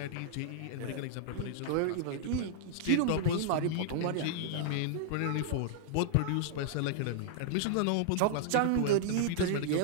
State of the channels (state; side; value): different; both; correlation -0.01